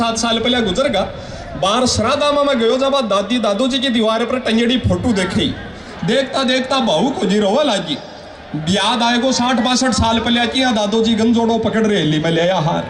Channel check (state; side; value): identical; both; correlation 1.00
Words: साल पहले गुजर गया। बाहर श्राद्धा में मैं गयो जब दादी दादू जी की दीवार पर टंगड़ी फोटो देखी, देखता देखता बहू को जी रोवा लागी। याद आएगो 60-62 साल पहले की दादू जी गंजोड़ो पकड़ रहे ली, मैं ले आया हार,